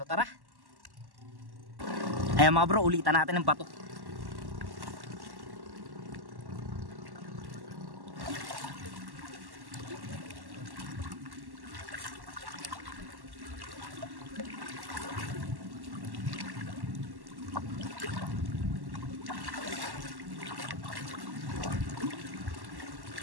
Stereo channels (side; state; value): left; late; 1.1 ms